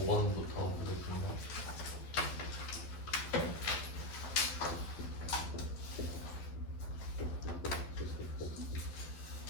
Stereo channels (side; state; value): right; late; 12 ms